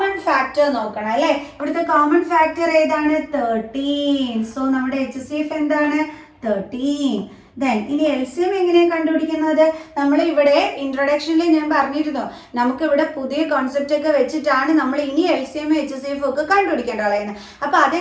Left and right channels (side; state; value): both; identical; correlation 1.00